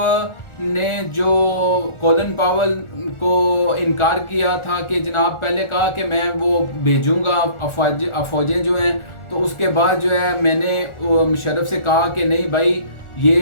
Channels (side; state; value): right; late; 1.4 ms